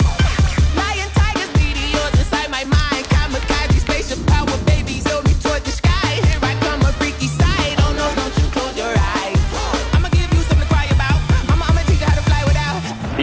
Lion, tigers, meteors inside my mind. Kamikaze, spaceship power, babies, hold me toward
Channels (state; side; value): identical; both; correlation 1.00